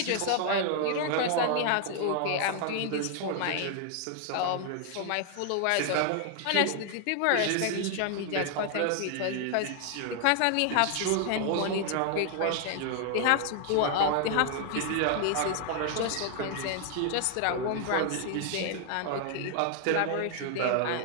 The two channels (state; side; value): different; both; correlation 0.00